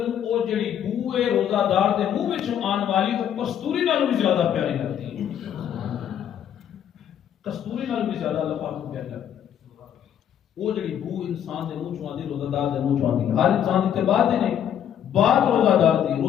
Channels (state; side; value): quieter; right; 9.6 dB